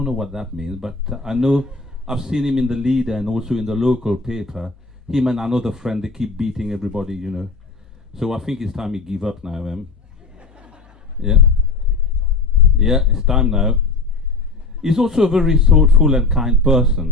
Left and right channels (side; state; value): right; quieter; 3.8 dB